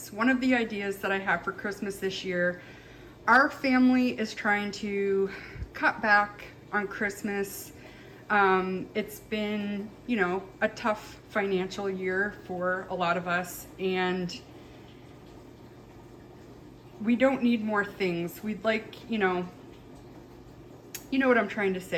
One of the ideas that I have for Christmas this year, our family is trying to cut back on Christmas. It's been, you know, a tough financial year for a lot of us, and we don't need more things. We'd like, you know what I'm trying to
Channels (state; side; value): identical; both; correlation 1.00